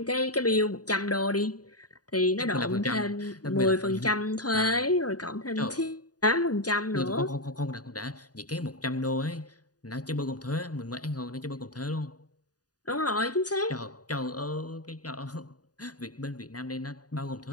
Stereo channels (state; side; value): late; right; 0.68 ms